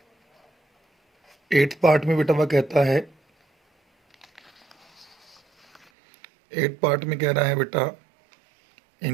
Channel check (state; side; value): drops out; left; at 5.9 s